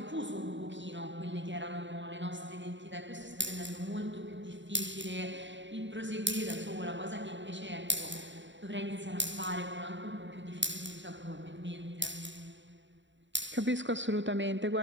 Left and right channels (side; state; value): left; late; 0.54 ms